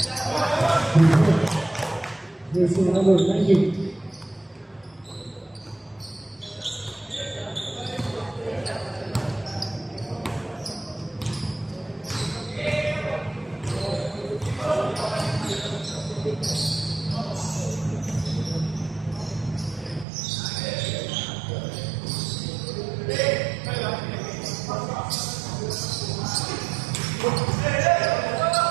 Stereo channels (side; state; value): left; drops out; at 20.1 s